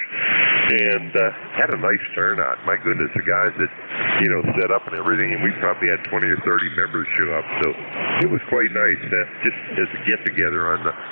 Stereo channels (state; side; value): inverted; both; correlation -1.00